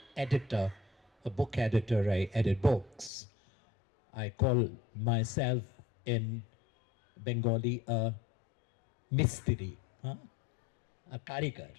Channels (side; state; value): right; drops out; at 3.1 s